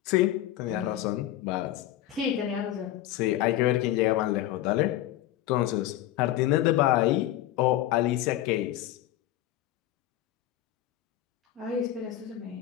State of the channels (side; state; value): right; quieter; 13.4 dB